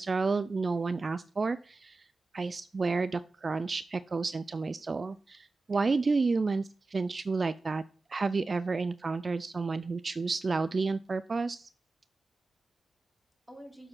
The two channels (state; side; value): quieter; left; 3.7 dB